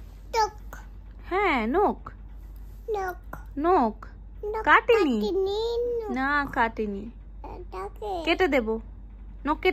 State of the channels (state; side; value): identical; both; correlation 1.00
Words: টক হ্যাঁ নখ, নক নখ কাটেনি। কাটিনি। না কাটেনি, এটাকে কেটে দেব, নখ